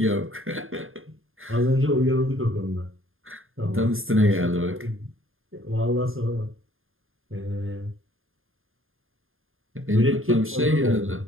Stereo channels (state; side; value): late; left; 0.60 ms